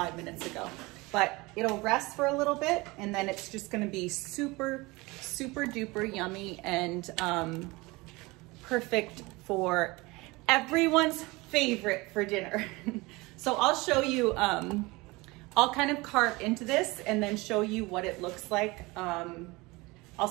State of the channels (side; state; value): left; quieter; 23.2 dB